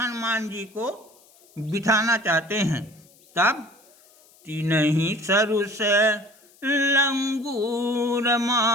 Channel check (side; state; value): left; noise; hiss, 29 dB below the sound